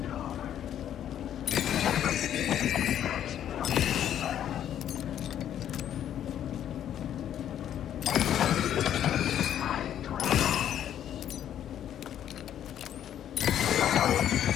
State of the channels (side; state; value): right; quieter; 10.4 dB